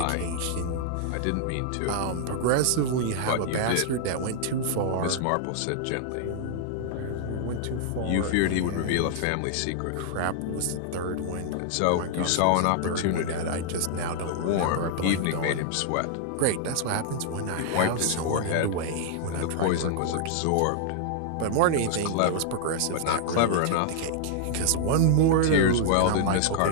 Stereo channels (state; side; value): different; both; correlation -0.01